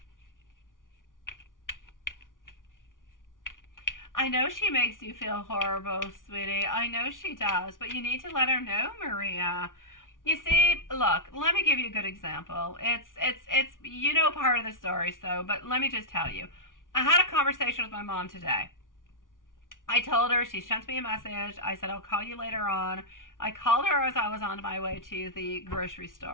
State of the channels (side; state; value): right; late; 0.88 ms